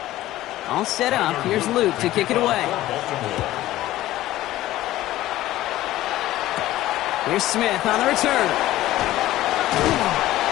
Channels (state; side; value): quieter; right; 15.3 dB